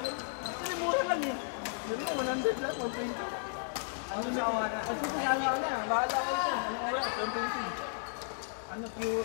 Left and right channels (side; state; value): right; silent; digital silence